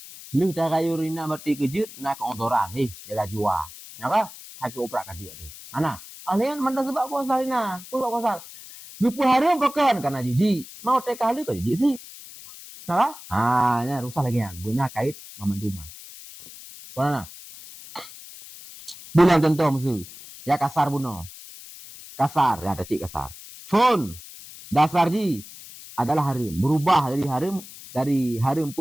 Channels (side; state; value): left; noise; hiss, 16 dB below the sound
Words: Lu tagayur ina berarti kejut nak keontoran jaga jua. Ya ka? Hak oprak ka dia ni. Ana, alian manda sebab puasa ina. Sebab puasa. Gupu hari pakan karena jiji. Mau tek kali ka jiji sih. Nah, nya rusak lagi kan. Beuna kait mamanduma. Mana? Bilang contoh musuh. Ya kasar buno. Kasar, ya ada cik kasar. Phone dasar ji adalah harim. Berubah dari harim 4